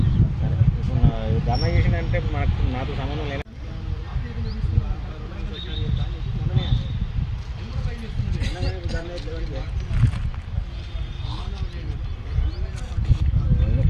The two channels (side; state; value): both; identical; correlation 1.00